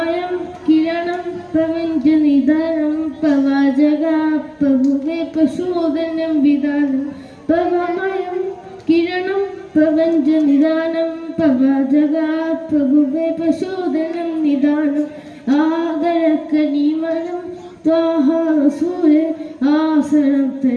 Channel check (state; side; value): identical; both; correlation 1.00